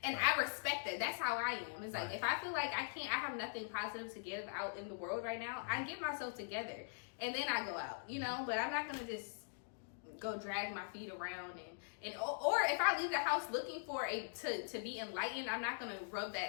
And I respect that. That's how I am. It's like if I feel like I have nothing positive to give out in the world right now, I get myself together and then I go out. But I'm not gonna just go drag my feet around or if I leave the house looking for to be enlightened, I'm not gonna rub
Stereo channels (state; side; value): silent; right; digital silence